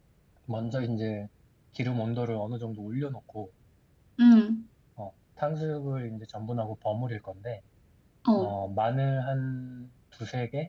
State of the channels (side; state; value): both; identical; correlation 1.00